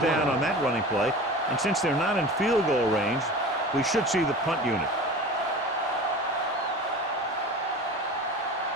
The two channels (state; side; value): normal; both; correlation 0.35